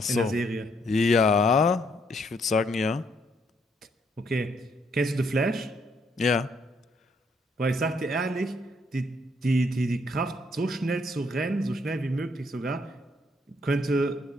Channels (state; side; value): normal; both; correlation 0.71